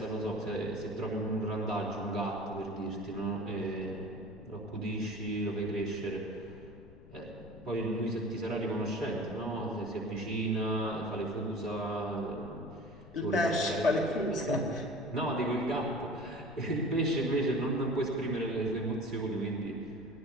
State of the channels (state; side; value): noise; left; rumble, 19 dB below the sound